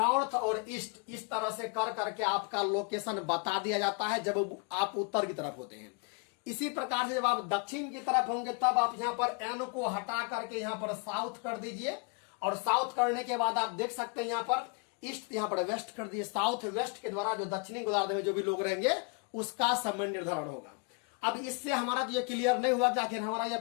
और ईस्ट, इस तरह से कर करके आपका लोकेशन बता दिया जाता है जब आप उत्तर की तरफ होते हैं। इसी प्रकार से जब आप दक्षिण की तरफ होंगे, तब आप यहाँ पर एन को हटा करके यहाँ पर साउथ कर दीजिए, और साउथ करने के बाद आप देख सकते हैं यहाँ पर ईस्ट, यहाँ पर वेस्ट कर दीजिए। साउथ वेस्ट के द्वारा जो दक्षिणी गोलार्ध में जो भी लोग रहेंगे उसका समय निर्धारण होगा। अब इससे हमारा तो ये क्लियर नहीं हुआ कि आखिर हमारा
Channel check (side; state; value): right; quieter; 33.3 dB